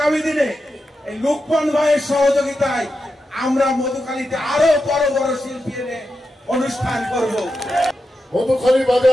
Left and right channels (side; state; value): both; normal; correlation 0.89